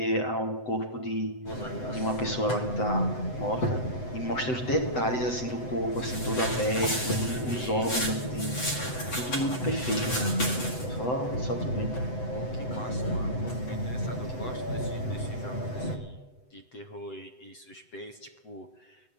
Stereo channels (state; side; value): late; right; 7.9 ms